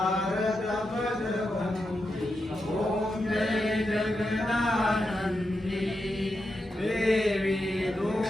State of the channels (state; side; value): normal; both; correlation 0.87